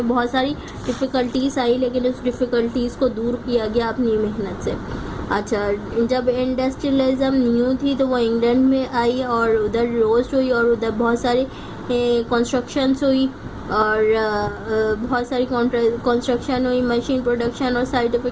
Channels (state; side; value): identical; both; correlation 1.00